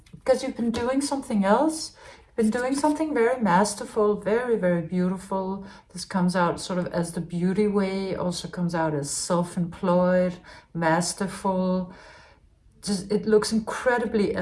because you've been doing something else. You've been doing something very masterful, very, very beautiful. This comes out sort of as the beauty way, also comes out as self-employed, masterful. Just, it looks incredibly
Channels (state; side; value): identical; both; correlation 1.00